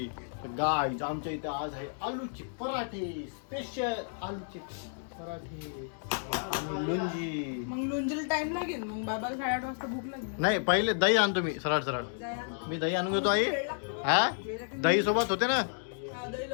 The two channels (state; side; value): silent; right; digital silence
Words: गाईज आमच्या इथे आज आहे आलूचे पराठे स्पेशल आलूचे पराठे आणि लोणची मग लुंजीला टाइम लागेल मग बाबाला 8:30 वाजता भूक लागेल नाही पहिले दही आणतो मी सरळ सरळ मी दही आणून घेतो आई हा दही सोबत होते ना हा, दही